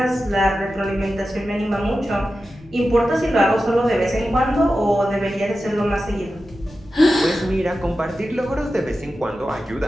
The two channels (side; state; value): both; normal; correlation 0.92